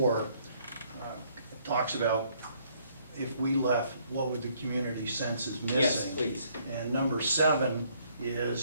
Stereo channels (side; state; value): both; inverted; correlation -0.66